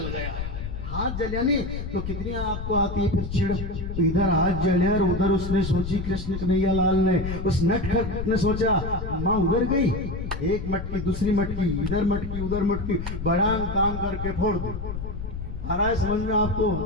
गया। हाथ जलिया नहीं तो कितनी आपको आती है फिर चिड़। तो इधर हाथ जलिया और उधर उसने सोची, कृष्ण कन्हैया लाल ने, उस नटखट ने सोचा, माँ उधर गई, एक मटकी दूसरी मटकी, इधर मटकी उधर मटकी, बड़ा काम करके फोड़ दो। आ रहा है समझ में आपको?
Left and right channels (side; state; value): left; noise; rumble, 6 dB below the sound